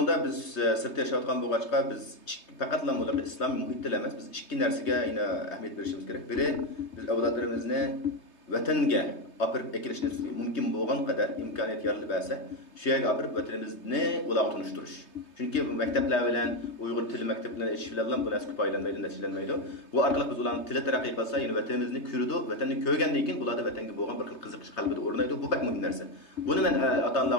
biz sirtda yashayotgan bo'lg'achqa biz faqatla ularga islomiy muhitda emas, biz ikki narsaga ahamiyat berishimiz kerak. Biri biz avlodlarimizni vatanga olib ekilishni mumkin bo'lgan qadar imkoniyat yaratib bersa, shu yerga olib vatanimizni ularga tunishtirish. Chunki maktablar bilan Uyg'ur tili maktablari ish bilan bu narsa foydalanmaydi, natijalanmaydi. Bu orqali biz ularning tili taraqqiy qilsa, ya'ni vatanimizni ko'rdi, vatanni ko'rgandan keyin bularda vatanga bo'lgan bir xil qiziqish qalbida o'rnaydi. Bu bak muhim narsa. Buni men ota-onalar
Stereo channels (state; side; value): late; right; 3.2 ms